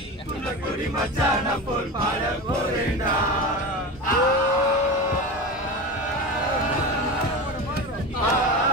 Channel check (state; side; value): normal; both; correlation 0.26